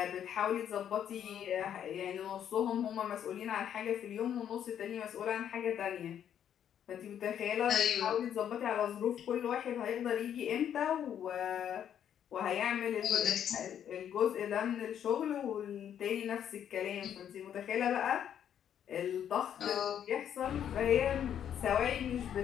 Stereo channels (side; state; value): right; quieter; 9.5 dB